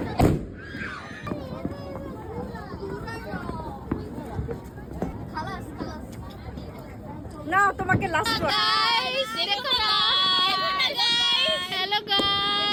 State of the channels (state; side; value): identical; both; correlation 1.00